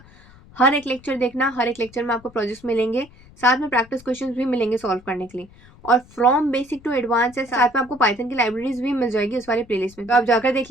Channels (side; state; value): left; noise; rumble, 24 dB below the sound